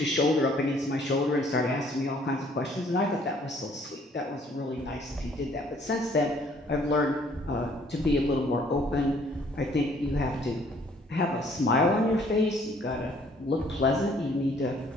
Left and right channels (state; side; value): normal; both; correlation 0.61